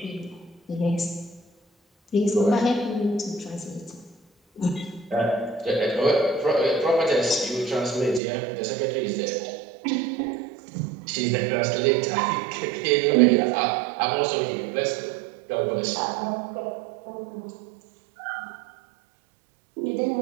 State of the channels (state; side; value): drops out; left; at 8.2 s